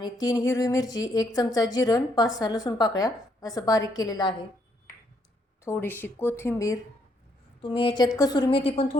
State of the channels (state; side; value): normal; both; correlation 0.73